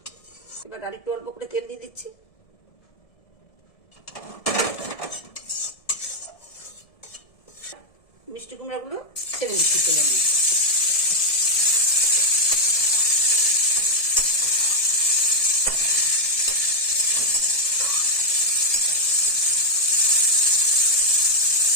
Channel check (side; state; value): right; late; 1.7 ms